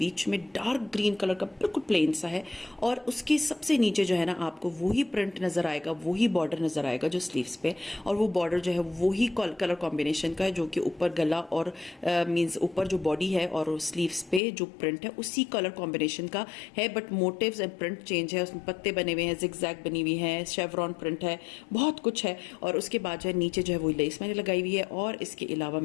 में डार्क ग्रीन कलर का बिल्कुल प्लेन सा है, और उसके सबसे नीचे जो है ना आपको वही प्रिंट नजर आएगा, वही बॉर्डर नजर आएगा जो स्लीव्स पे। और वो बॉर्डर जो है वही कलर कॉम्बिनेशन का है, जो कि ऊपर गला और मींस ऊपर जो बॉडी है और स्लीव्स पे जो प्रिंट है उसी कलर कॉम्बिनेशन का है। But motives and print change है, उसमें पत्ते बने हुए हैं, जिगजैग बनी हुई है, शेवरॉन प्रिंट है, बहुत कुछ है। और उसके बाद जो है नीचे जो है वो लेस मैंने लगाई हुई है। और इसके अलावा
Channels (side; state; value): right; drops out; at 14.4 s